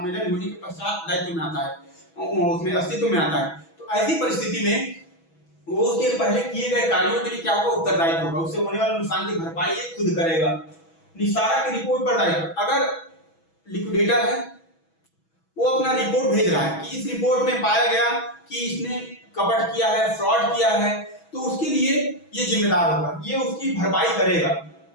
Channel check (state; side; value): late; right; 6.1 ms